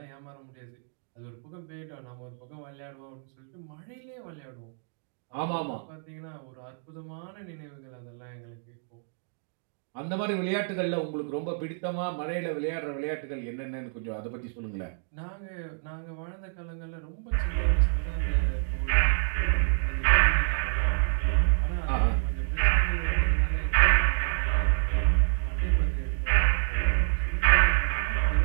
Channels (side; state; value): left; silent; digital silence